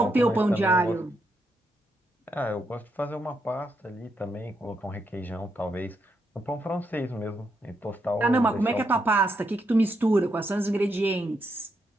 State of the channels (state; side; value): normal; both; correlation 0.80